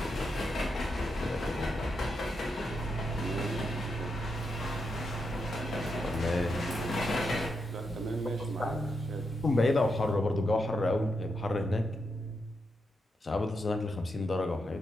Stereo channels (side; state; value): both; normal; correlation 0.84